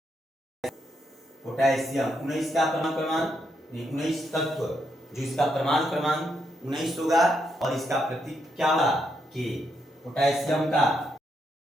पोटेशियम 19 का परमाणु क्रमांक, 19 तत्व जो इसका परमाणु क्रमांक 19 होगा, और इसका प्रतीक क्या होगा? के। पोटेशियम का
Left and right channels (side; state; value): both; normal; correlation 0.79